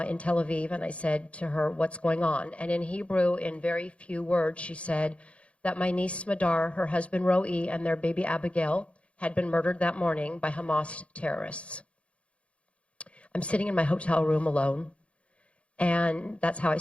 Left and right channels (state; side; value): late; right; 0.061 ms